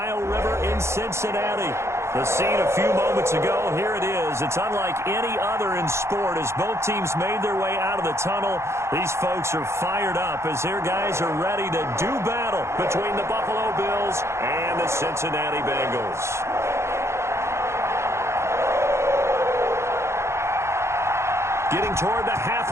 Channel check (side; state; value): left; late; 0.13 ms